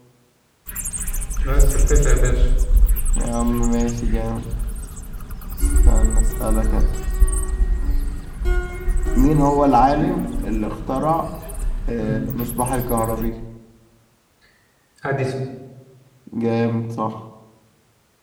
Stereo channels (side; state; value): both; identical; correlation 1.00